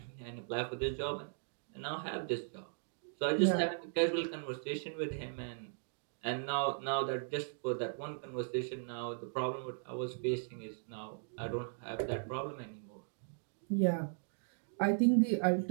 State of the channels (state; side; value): silent; left; digital silence